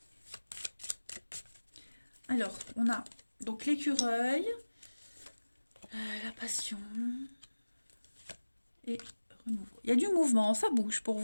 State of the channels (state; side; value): inverted; both; correlation -1.00